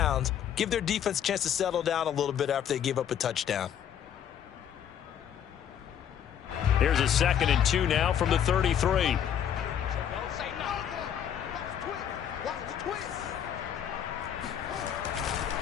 Give their defense a chance to settle down a little bit after they give up a touchdown. Here's a 2nd and 2 now from the 33.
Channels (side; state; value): right; quieter; 9.3 dB